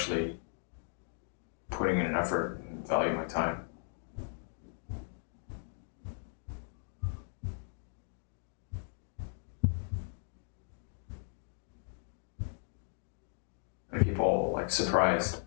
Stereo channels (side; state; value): right; silent; digital silence